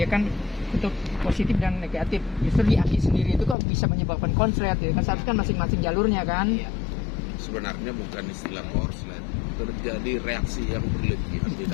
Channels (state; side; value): drops out; right; at 3.6 s